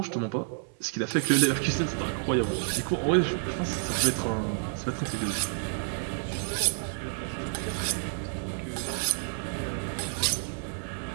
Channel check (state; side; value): silent; left; digital silence